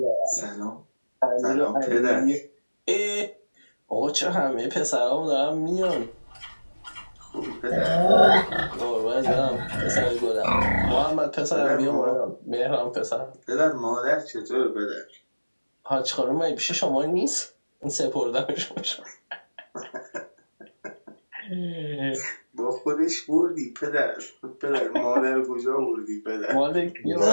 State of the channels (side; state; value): both; inverted; correlation -1.00